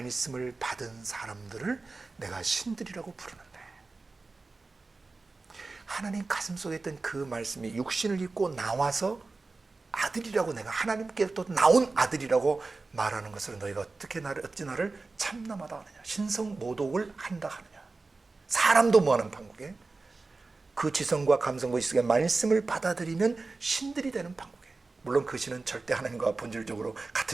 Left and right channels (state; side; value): quieter; left; 3.7 dB